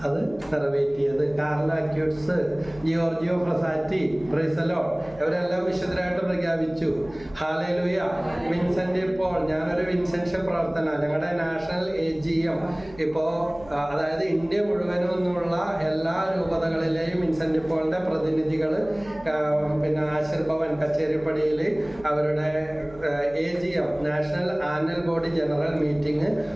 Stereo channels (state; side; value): noise; right; hum, 21 dB below the sound